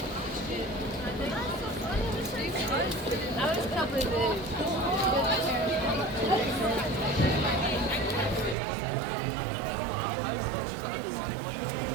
That was probably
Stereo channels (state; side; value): drops out; left; at 8.6 s